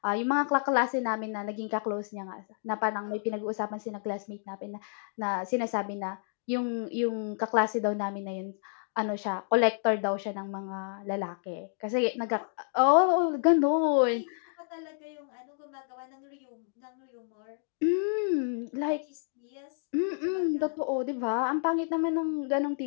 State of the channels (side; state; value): right; silent; digital silence